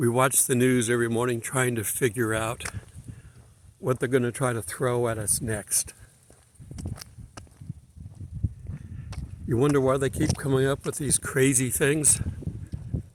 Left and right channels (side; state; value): both; identical; correlation 1.00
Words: watch the news every morning trying to figure out what they're going to try to throw at us next. You wonder why they keep coming up with these crazy things?